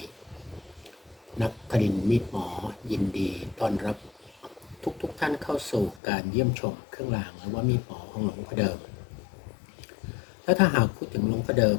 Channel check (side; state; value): right; drops out; at 6.0 s